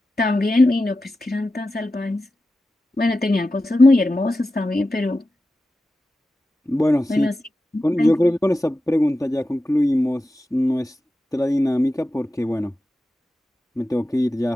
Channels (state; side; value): normal; both; correlation 0.92